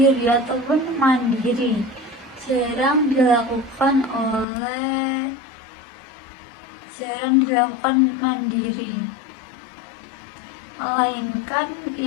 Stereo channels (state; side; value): drops out; right; at 4.5 s